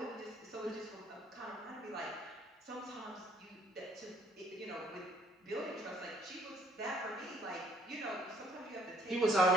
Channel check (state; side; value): normal; both; correlation 0.62